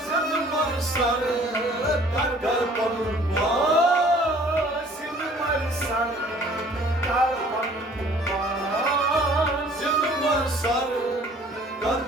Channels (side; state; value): both; normal; correlation 0.54